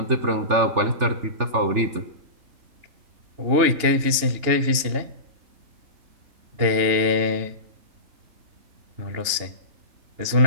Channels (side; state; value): left; late; 2.9 ms